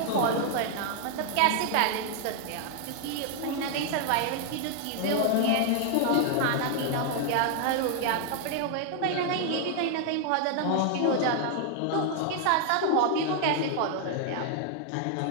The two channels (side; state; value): both; different; correlation 0.00